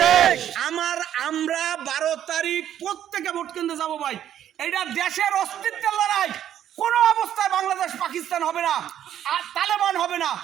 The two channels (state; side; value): quieter; left; 10.7 dB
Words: আমরা 12 তারিখ প্রত্যেকে ভোট কেন্দ্রে যাবো ভাই। এইটা দেশের অস্তিত্বের লড়াই। কোনো অবস্থায় বাংলাদেশ পাকিস্তান হবে না, আর তালেবান হবে না।